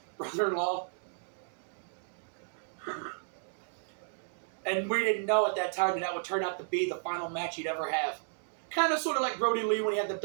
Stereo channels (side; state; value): left; silent; digital silence